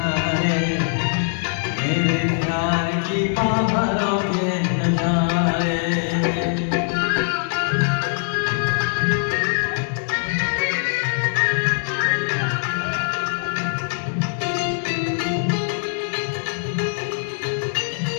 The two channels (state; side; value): silent; right; 64 dB below the other